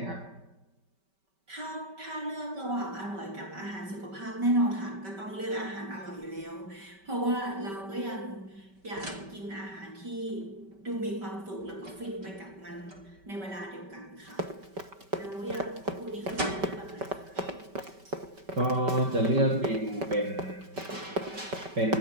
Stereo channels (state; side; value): late; left; 5.2 ms